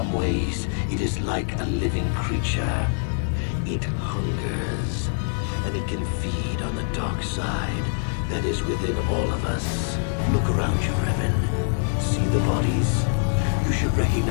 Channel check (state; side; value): silent; right; 56 dB below the other